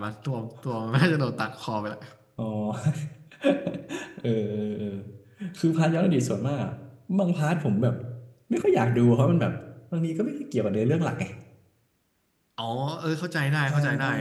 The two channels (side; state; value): both; identical; correlation 1.00